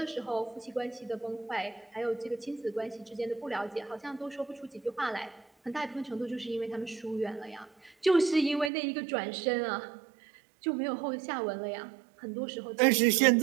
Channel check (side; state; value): left; drops out; at 8.7 s